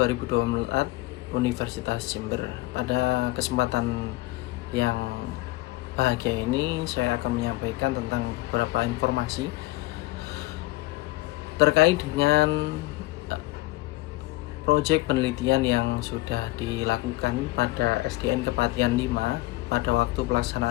Universitas Jember. Pada kesempatan yang bahagia ini saya akan menyampaikan tentang beberapa informasi terkait dengan proyek penelitian yang sudah dilakukan pada SDN Kepatihan 5 pada waktu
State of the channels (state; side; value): quieter; right; 19.6 dB